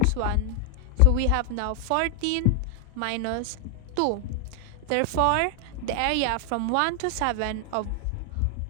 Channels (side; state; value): both; different; correlation 0.00